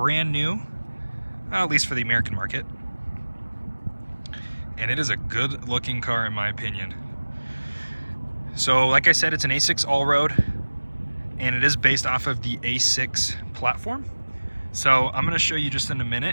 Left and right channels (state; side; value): inverted; both; correlation -1.00